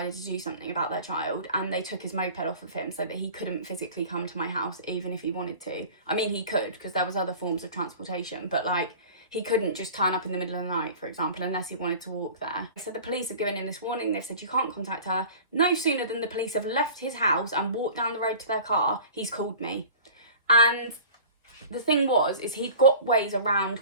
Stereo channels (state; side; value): inverted; both; correlation -0.41